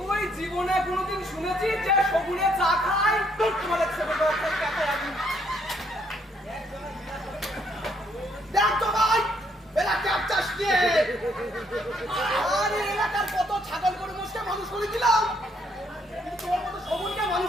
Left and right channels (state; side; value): normal; both; correlation 0.70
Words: জীবনে কোনোদিন শুনেছিস যে শগুনে চা খায়? তোর তোমার ছেলে তো একটা ক্যাফে আগুন। দেখ জগাই, এরা ক্যাপ চাষ নিয়ে। আরে এলাকার কত ছাগল গরু মোষকে মানুষ করে দিলাম, কিন্তু তোর মতো শগুনকে